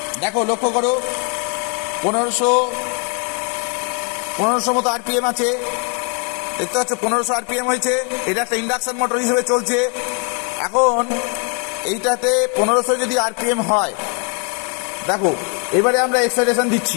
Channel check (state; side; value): quieter; right; 38.1 dB